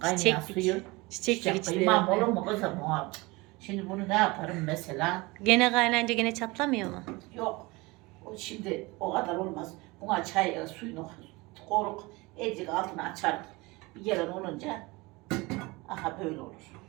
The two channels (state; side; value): quieter; left; 23.5 dB